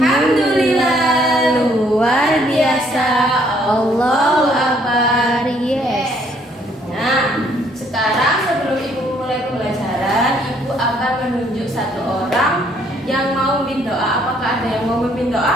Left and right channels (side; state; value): both; normal; correlation 0.65